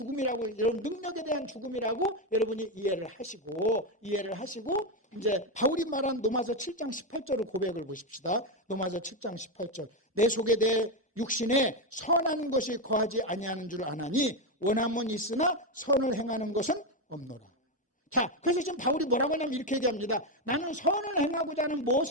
여러분 능력에 대한 죽음이라고 여러분이 이해를 하시고 이제 바울이 말한 로마서 7장 18절을 고백을 보십시다. 로마서 7장 18절. 내 속에 내 육신에 선한 것이 거하지 아니하는 줄 아나니 원함은 있으나 선을 행하는 것은 없노라. 자, 그래서 지금 바울이 뭐라고 하냐면 이렇게 얘기합니다. 나는 선을 행하고자 하는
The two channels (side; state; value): both; normal; correlation 0.09